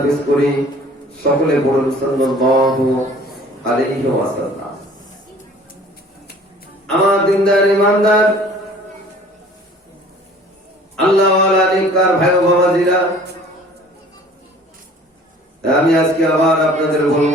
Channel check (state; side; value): normal; both; correlation 0.50